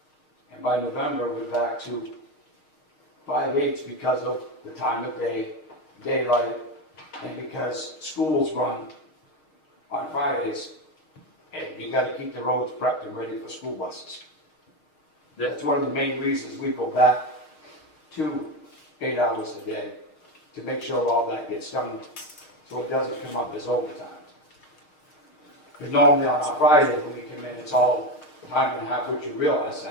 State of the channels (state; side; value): late; right; 6.5 ms